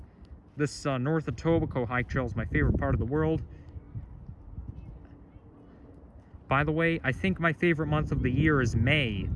this North Etobicoke hike trail is my favorite part of the world. By the way, I think my favorite month of the year is May.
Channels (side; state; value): both; identical; correlation 1.00